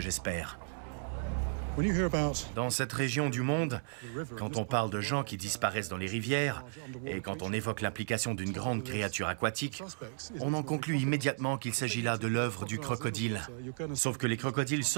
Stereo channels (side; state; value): left; silent; 55 dB below the other